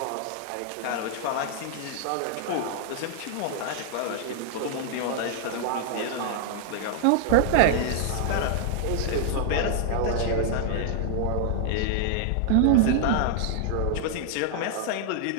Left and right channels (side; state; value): both; different; correlation 0.00